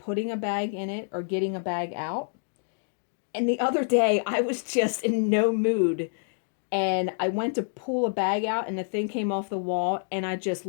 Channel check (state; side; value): silent; right; digital silence